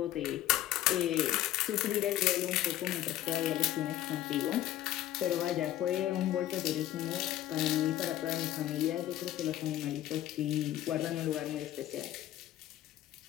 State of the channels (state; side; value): quieter; right; 13.4 dB